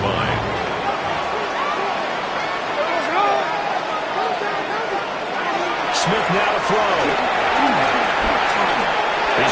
line. Smith now to throw. He's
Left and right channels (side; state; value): both; identical; correlation 1.00